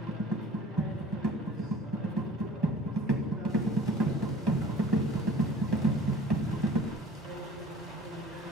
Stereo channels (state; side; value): normal; both; correlation 0.47